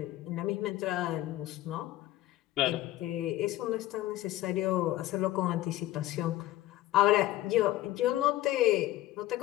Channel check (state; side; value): quieter; right; 15.4 dB